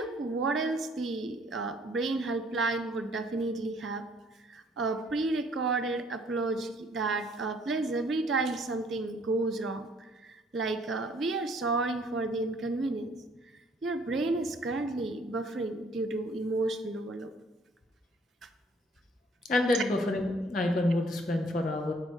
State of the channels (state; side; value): normal; both; correlation 0.60